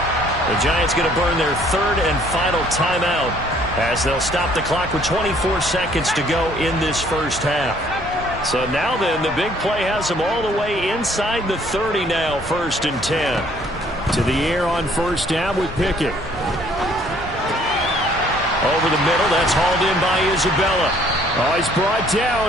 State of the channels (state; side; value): normal; both; correlation 0.61